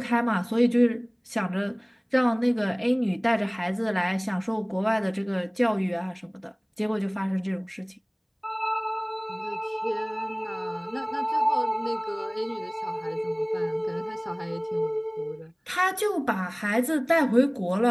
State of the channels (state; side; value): identical; both; correlation 1.00